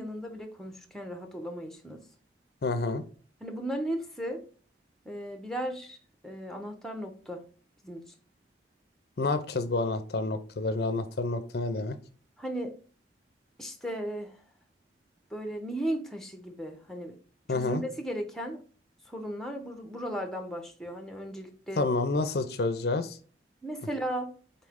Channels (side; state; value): both; normal; correlation 0.40